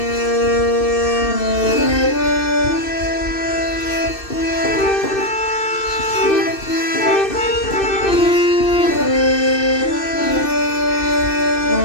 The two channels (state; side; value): late; right; 2.6 ms